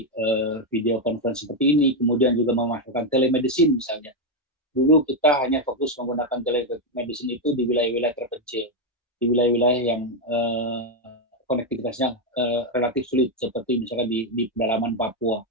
video conference seperti ini, kemudian juga memasukkan telemedicine misalnya. Dulu kita hanya fokus menggunakan telemedicine itu di wilayah-wilayah terpencil, di wilayah-wilayah yang konektivitasnya relatif sulit, seperti misalnya di pedalaman Papua.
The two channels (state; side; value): normal; both; correlation 0.04